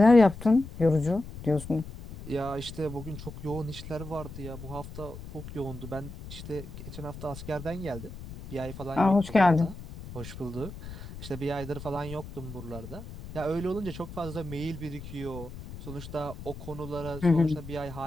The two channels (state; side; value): noise; left; rumble, 12 dB below the sound